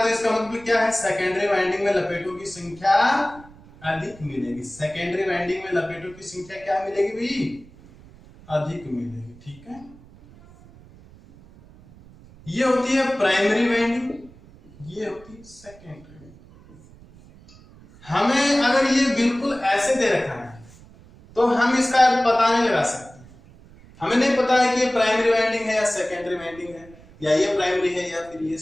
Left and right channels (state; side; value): noise; right; rumble, 23 dB below the sound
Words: तो इसका मतलब क्या है? सेकेंडरी वाइंडिंग में लपेटों की संख्या अधिक मिलेगी। सेकेंडरी वाइंडिंग में लपेटों की संख्या क्या मिलेगी भाई? अधिक मिलेगी। ठीक है, ये होती है प्राइमरी वाइंडिंग, ये होती है सेकेंडरी। हमें अगर ये बिल्कुल ऐसे दे रखा है तो हम इसका पता नहीं लगा सकते। हमें नहीं पता है कि ये प्राइमरी वाइंडिंग है या सेकेंडरी वाइंडिंग है, या ये प्राइमरी है या फिर ये